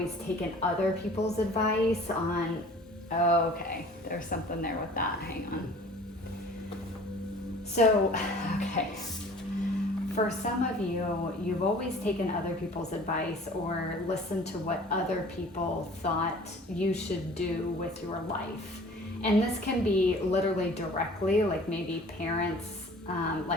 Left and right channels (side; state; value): both; normal; correlation 0.48